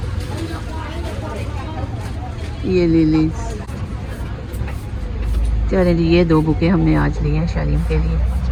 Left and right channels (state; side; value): identical; both; correlation 1.00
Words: ये लिलीज। चलिए ये 2 बुके हमने आज लिए हैं शालीम के